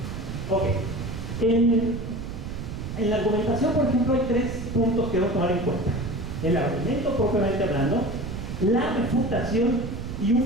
Ok. En la argumentación, por ejemplo, hay 3 puntos que debemos tomar en cuenta. El argumento propiamente hablando, la refutación y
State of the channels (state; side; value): noise; right; rumble, 7 dB below the sound